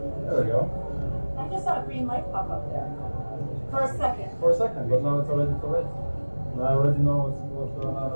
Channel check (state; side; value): inverted; both; correlation -1.00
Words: there we go. I just saw a green light pop up there. For a second. For a second, but now it's already too late. Now I already know what's going on